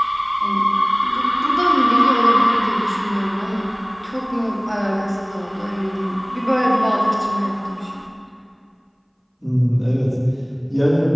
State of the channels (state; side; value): identical; both; correlation 1.00